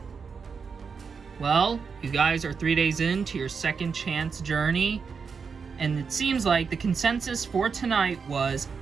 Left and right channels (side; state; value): left; quieter; 5.6 dB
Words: Well, you guys are 3 days into your second chance journey, and it seems like the consensus for tonight was